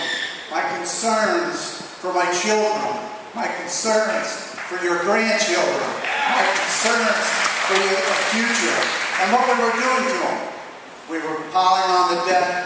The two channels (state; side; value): identical; both; correlation 1.00